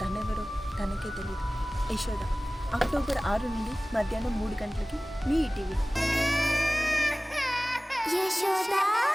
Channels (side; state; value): both; normal; correlation 0.98